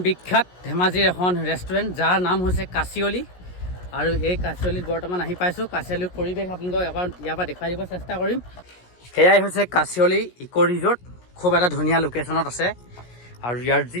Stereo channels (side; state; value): right; late; 17 ms